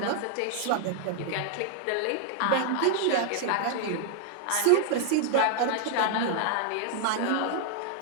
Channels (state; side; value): different; both; correlation 0.00